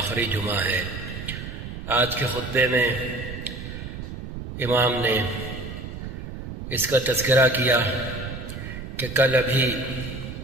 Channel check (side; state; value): right; noise; rumble, 9 dB below the sound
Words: جمعہ ہے۔ آج کے خطبے میں امام نے اس کا تذکرہ کیا کہ کل ابھی